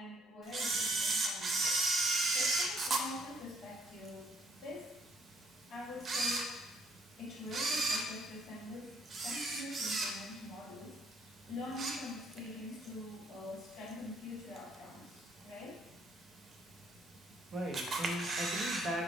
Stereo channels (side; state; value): both; normal; correlation 0.66